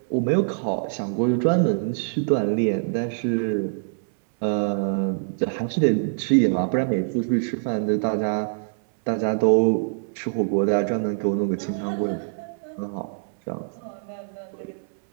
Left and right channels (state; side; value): silent; left; 62 dB below the other